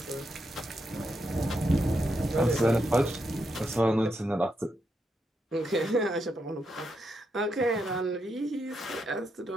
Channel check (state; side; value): normal; both; correlation 0.82